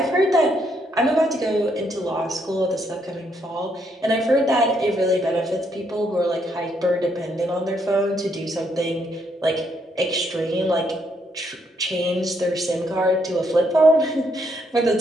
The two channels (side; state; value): both; normal; correlation 0.74